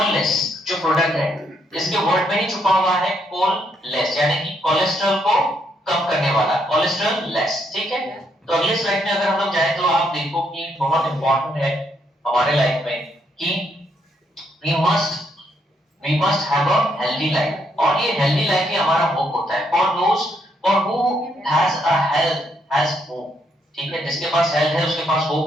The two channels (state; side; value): normal; both; correlation 0.74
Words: जो प्रोडक्ट है इसके वर्ड में ही छुपा हुआ है कोललेस, यानी कि कोलेस्ट्रॉल को कम करने वाला, कोलेस्ट्रॉल लेस। ठीक है, तो अगले स्लाइड में अगर हम लोग जाए तो आप देखो कि बहुत इंपॉर्टेंट है हमारे लाइफ में कि we must have a healthy life, और ये healthy life ही हमारा होप होता है। for who has a health has hope। ठीक है, जिसके पास हेल्थ है उसके पास